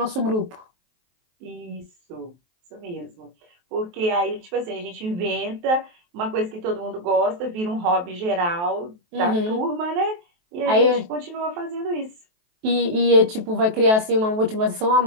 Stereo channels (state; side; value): late; left; 23 ms